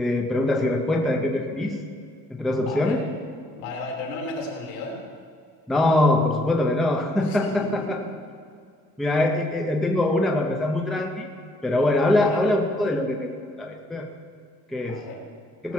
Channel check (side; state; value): both; normal; correlation 0.69